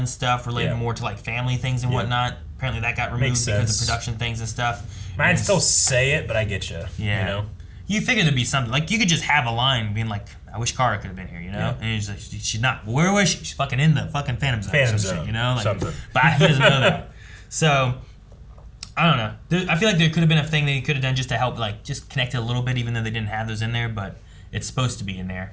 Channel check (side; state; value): both; identical; correlation 1.00